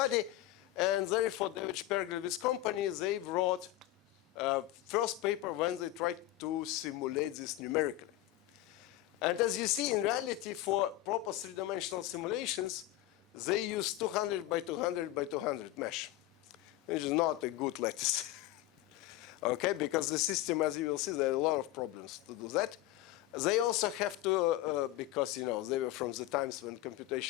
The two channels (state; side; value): quieter; right; 15.0 dB